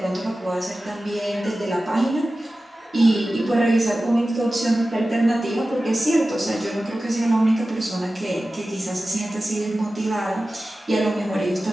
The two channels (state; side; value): normal; both; correlation 0.95